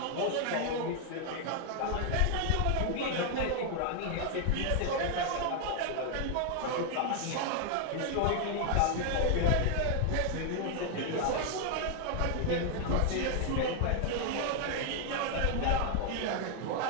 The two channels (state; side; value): different; both; correlation 0.00